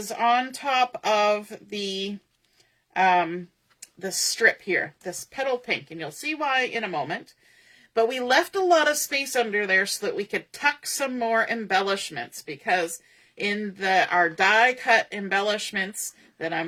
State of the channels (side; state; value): both; identical; correlation 1.00